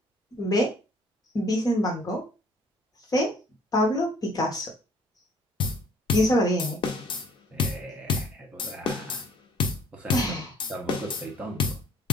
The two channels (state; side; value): normal; both; correlation 0.58